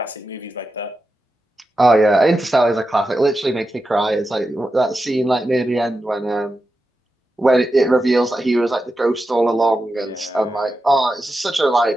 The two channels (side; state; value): both; normal; correlation 0.90